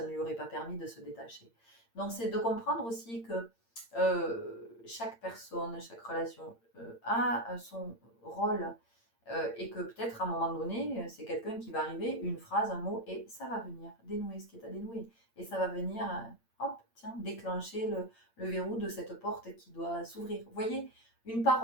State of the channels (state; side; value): late; right; 8.7 ms